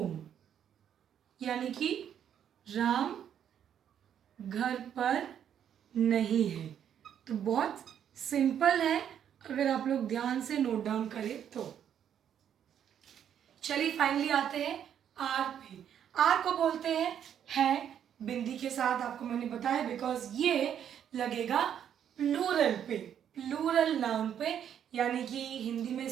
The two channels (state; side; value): quieter; left; 9.2 dB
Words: यानी कि राम घर पर नहीं है। तो बहुत सिंपल है अगर आप लोग ध्यान से नोट डाउन करें तो। चलिए फाइनली आते हैं आर पे। आर को बोलते हैं है बिंदी के साथ, आपको मैंने बताया बिकॉज ये लगेगा प्लूरल पे, प्लूरल नाउन पे, यानी कि हिंदी में